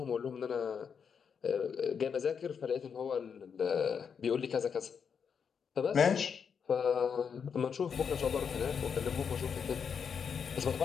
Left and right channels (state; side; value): quieter; right; 6.7 dB